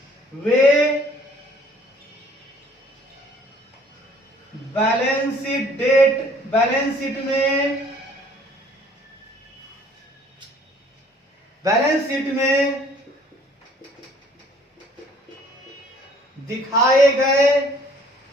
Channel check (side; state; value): both; normal; correlation 0.57